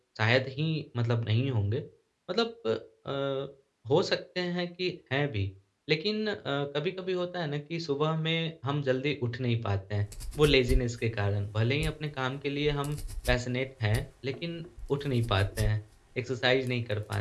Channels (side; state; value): both; identical; correlation 1.00